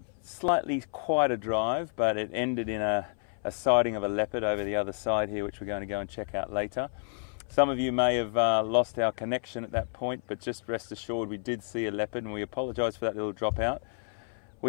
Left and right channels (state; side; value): silent; right; 58 dB below the other